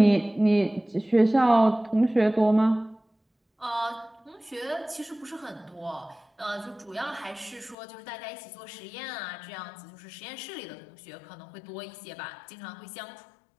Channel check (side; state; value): right; drops out; at 7.8 s